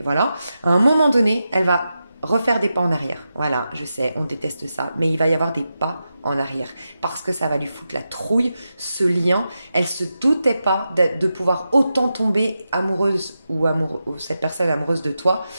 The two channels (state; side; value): inverted; both; correlation -0.90